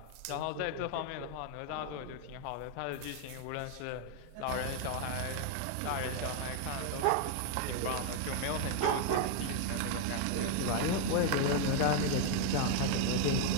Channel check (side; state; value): both; different; correlation 0.00